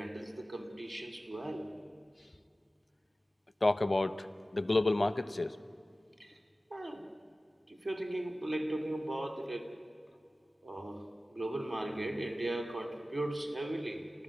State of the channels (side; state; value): both; normal; correlation 0.96